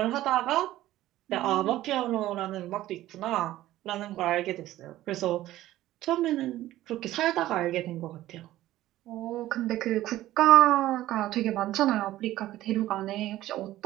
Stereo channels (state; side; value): quieter; left; 14.9 dB